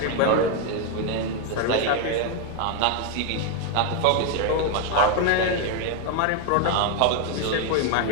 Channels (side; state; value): both; different; correlation 0.01